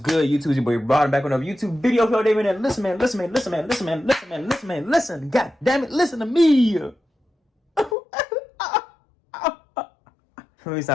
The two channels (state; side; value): drops out; right; at 8.0 s